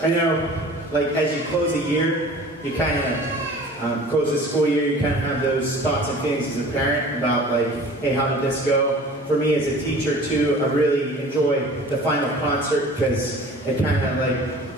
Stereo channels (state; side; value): normal; both; correlation 0.44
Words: know, like, as you close a year, you kind of close the school year, you kind of have those thoughts and feelings as a parent about, like, hey, how did this go? For me as a teacher, too, I really enjoy the final concert because it kind of,